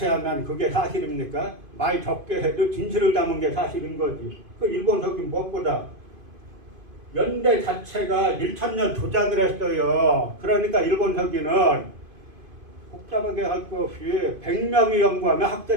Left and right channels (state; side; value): late; left; 2.5 ms